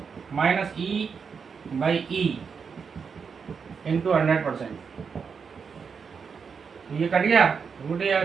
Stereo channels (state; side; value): quieter; left; 6.0 dB